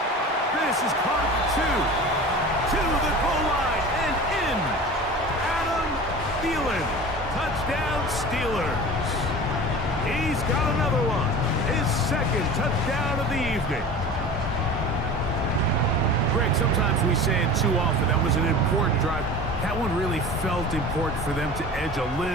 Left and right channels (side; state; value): both; normal; correlation 0.37